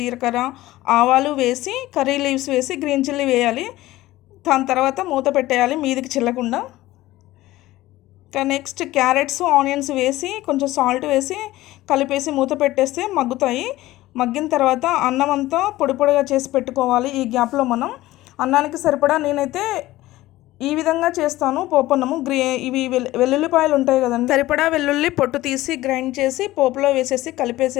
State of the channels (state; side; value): quieter; right; 16.9 dB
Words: ఆవాలు వేసి కర్రీ లీవ్స్ వేసి గ్రీన్ చిల్లీ వేయాలి. దాని తర్వాత మూత పెట్టేయాలి మీదికి చిల్లకుండా. ఇంకా నెక్స్ట్ క్యారెట్స్, ఆనియన్స్ వేసి కొంచెం సాల్ట్ వేసి కలిపేసి మూత పెట్టేస్తే మగ్గుతాయి. మగ్గిన తర్వాత అన్నం అంతా పొడి పొడిగా చేసి పెట్టుకోవాలి. ఈ గ్యాప్లో మనం అన్నానికి సరిపడా నేనైతే ఈ విధంగా చేస్తాను పోపన్నము. ఇవి వెల్లుల్లిపాయలు ఉంటాయి కదండి, సరిపడా వెల్లుల్లి పొట్టు తీసి గ్రైండ్ చేసి పోపులో వేసేసి